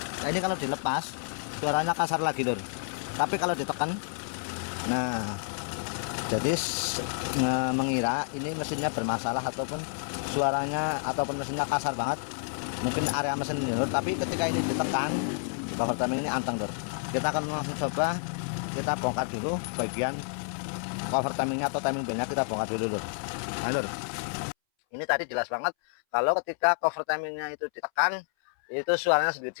ini kalau dilepas suaranya kasar lagi lur, tapi kalau ditekan, nah jadi mengira ini mesinnya bermasalah ataupun suaranya ataupun mesinnya kasar banget, mungkin area mesin ini lur. Tapi ketika ini ditekan di cover timing ini anteng lur. Kita akan langsung coba, kita bongkar dulu bagian cover timingnya atau timing bandnya, kita bongkar dulu lur. Nah, lur, ini tadi jelas banget kalau ketika cover timingnya itu ditekan itu suaranya sedikit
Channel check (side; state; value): right; silent; 58 dB below the other